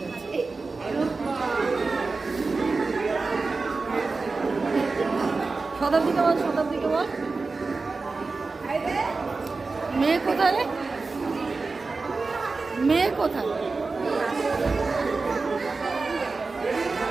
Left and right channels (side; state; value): left; quieter; 4.0 dB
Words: গেছে। শতাব্দীকে বল, শতাব্দীকে বল। মেয়ে কোথায়? মেয়ে কোথায়?